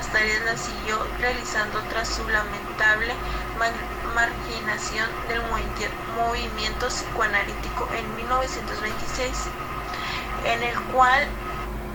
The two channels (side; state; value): both; identical; correlation 1.00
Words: tareas las siguió realizando tras su lamentable marginación del movimiento psicoanalítico en 1926,